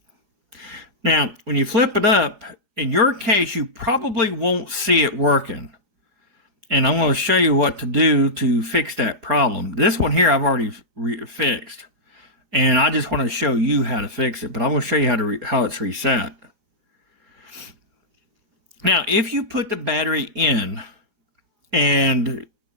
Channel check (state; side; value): late; left; 4.8 ms